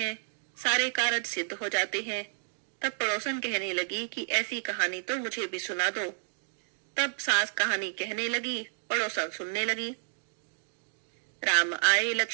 सारे कारज सिद्ध हो जाते हैं। तब पड़ोसन कहने लगी कि ऐसी कहानी तो मुझे भी सुना दो। तब सास कहानी कहने लगी, पड़ोसन सुनने लगी। राम आए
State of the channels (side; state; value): left; silent; digital silence